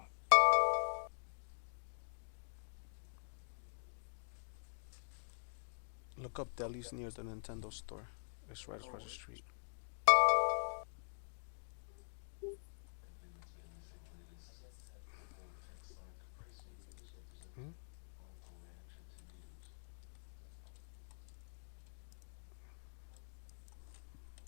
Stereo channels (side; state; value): right; silent; digital silence